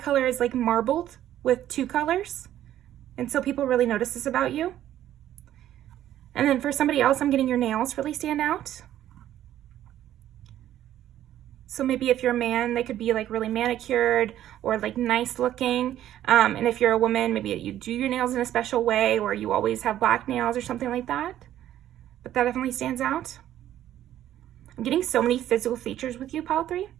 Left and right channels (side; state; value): left; quieter; 12.2 dB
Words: color is like marbled with 2 colors. And so people really notice this about you. And then for somebody else, I'm getting your nails really stand out. So maybe if you're a man, they could be like really manicured or like nice looking. And if you're a woman, maybe you do your nails in a special way, or you always have black nails or something like that. But that definitely stands out. I'm getting so many physical features with you, pile 3.